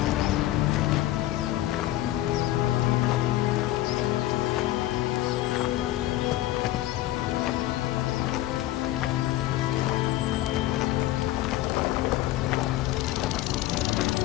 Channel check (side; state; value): right; quieter; 15.1 dB